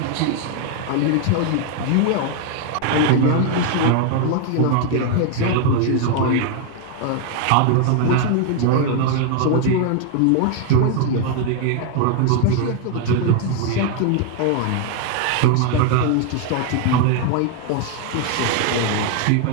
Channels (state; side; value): different; both; correlation 0.00